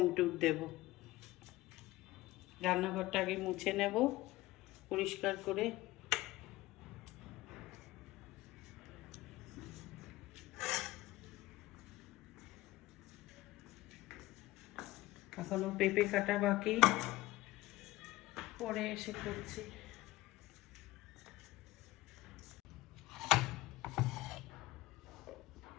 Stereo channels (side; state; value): right; quieter; 18.2 dB